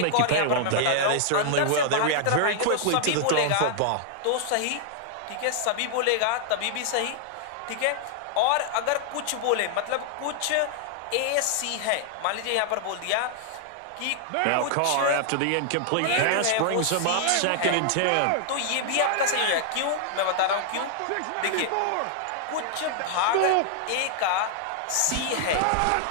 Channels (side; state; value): both; different; correlation -0.01